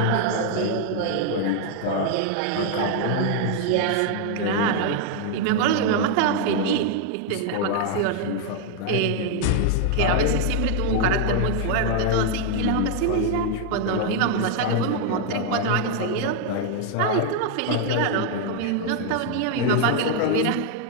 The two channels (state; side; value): different; both; correlation 0.00